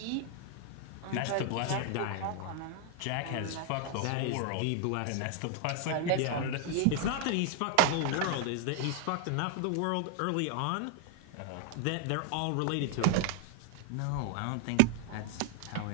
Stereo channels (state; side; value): different; both; correlation 0.00